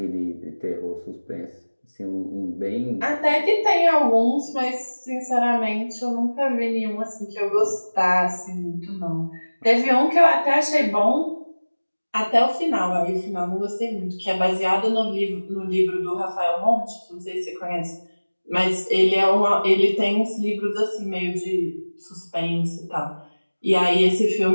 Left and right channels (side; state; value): both; inverted; correlation -1.00